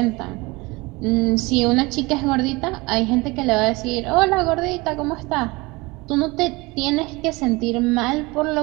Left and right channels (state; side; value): quieter; left; 23.8 dB